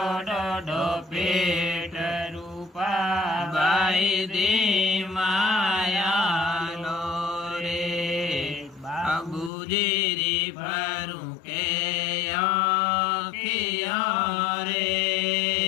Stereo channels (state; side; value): drops out; right; at 9.5 s